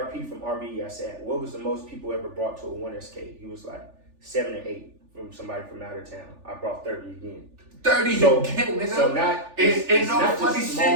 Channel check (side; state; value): left; late; 3.4 ms